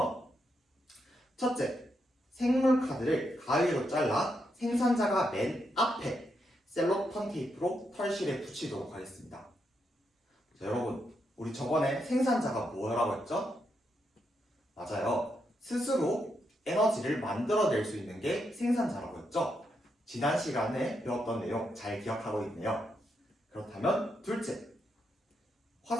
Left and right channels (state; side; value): normal; both; correlation 0.81